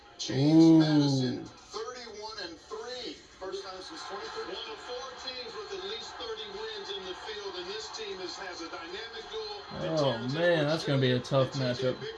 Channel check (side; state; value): both; identical; correlation 1.00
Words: James Madison, 31-3. First time since 2013. One of 4 teams with at least 30 wins in the field, and this team has a dynamic duel. Oh, man, that's going to be a tough matchup.